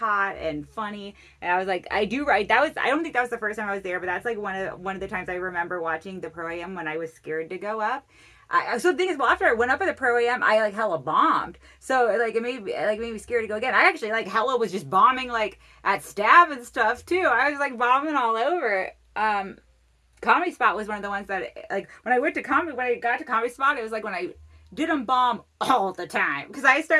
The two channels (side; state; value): both; identical; correlation 1.00